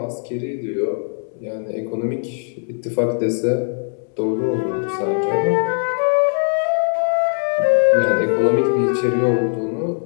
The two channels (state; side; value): silent; right; 66 dB below the other